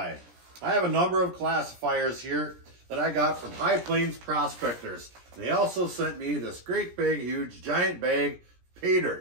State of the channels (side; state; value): left; late; 17 ms